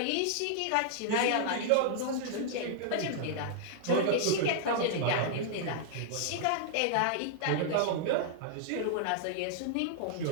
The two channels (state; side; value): different; both; correlation -0.01